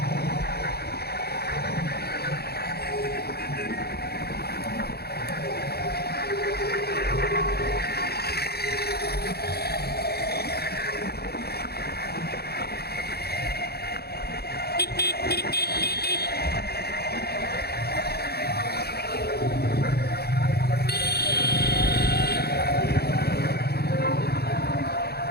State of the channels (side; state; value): right; late; 0.46 ms